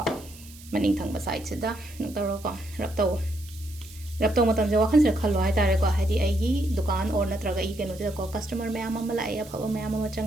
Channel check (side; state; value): right; noise; hiss, 20 dB below the sound